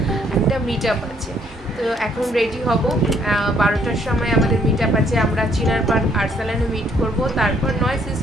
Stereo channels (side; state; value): both; normal; correlation 0.66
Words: একটা মিট আপ আছে। তো এখন রেডি হব, 12টার সময় আমাদের মিট আপ আছে। আমরা চিনার পার্ক আর্সালানে মিট করব, তারপর নয়